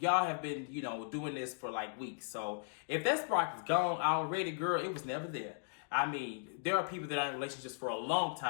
have been, doing this for like weeks. So if that spark is gone already, girl, it was never there. There are people that are in relationships for a long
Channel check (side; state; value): right; silent; digital silence